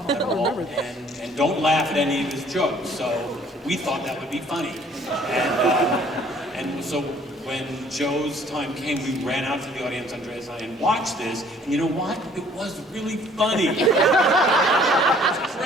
at all, and don't laugh at any of his jokes. So we thought that would be funny. And so when Joe's time came, we ran out to the audience, Andreas and I, and watched this, and you know what? It was really funny. It was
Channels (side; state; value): both; normal; correlation 0.57